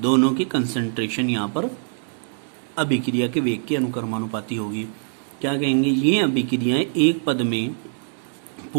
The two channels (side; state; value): left; silent; digital silence